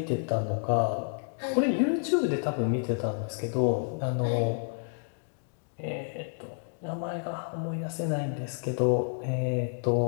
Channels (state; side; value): silent; right; digital silence